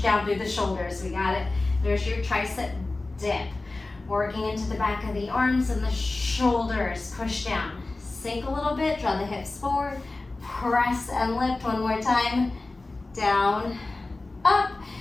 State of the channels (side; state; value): right; quieter; 3.2 dB